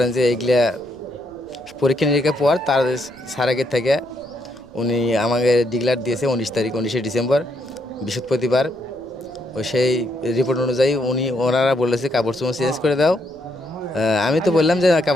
যে এইগুলা পরীক্ষা নিরীক্ষা পর তার স্যার আগের থেকে উনি আমাকে ডিক্লার দিয়েছে 19 তারিখ, 19শে ডিসেম্বর, বৃহস্পতিবার। ওই সেই রিপোর্ট অনুযায়ী ওনারা বলেছে কাপড় চোপড় চেঞ্জ করে দাও। আমি তো বললাম যে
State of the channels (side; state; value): right; noise; rumble, 28 dB below the sound